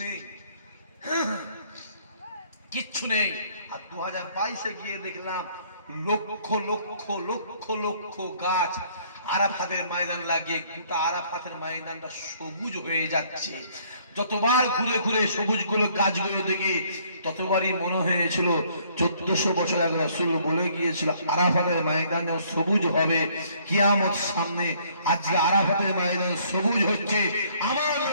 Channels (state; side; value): inverted; both; correlation -0.63